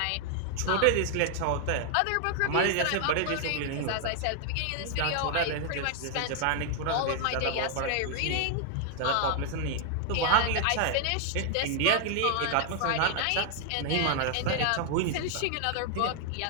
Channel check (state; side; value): different; both; correlation 0.00